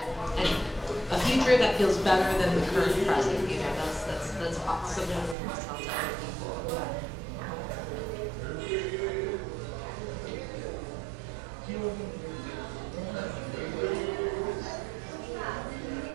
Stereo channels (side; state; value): left; drops out; at 5.4 s